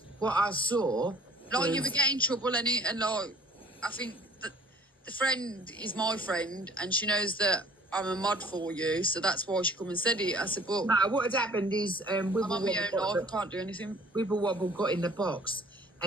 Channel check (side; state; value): both; normal; correlation 0.53